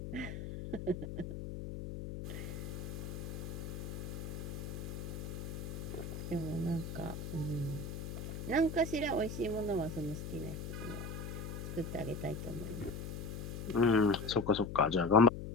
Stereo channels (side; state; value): left; noise; hum, 6 dB below the sound